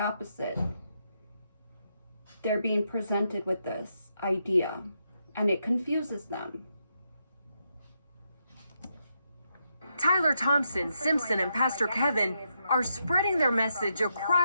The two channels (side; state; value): both; inverted; correlation -0.81